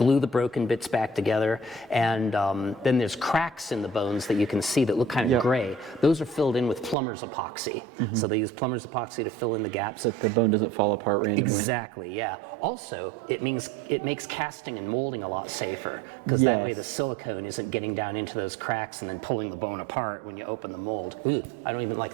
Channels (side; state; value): left; drops out; at 7.0 s